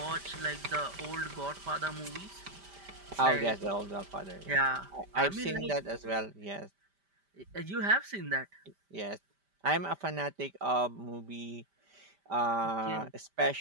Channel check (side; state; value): left; late; 5.1 ms